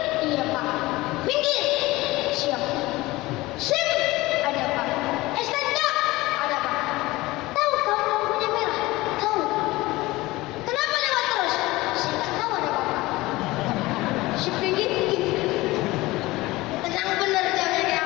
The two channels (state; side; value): quieter; right; 19.7 dB